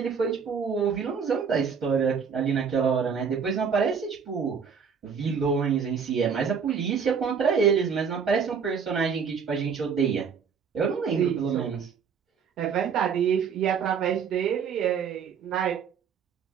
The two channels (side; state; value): left; quieter; 6.4 dB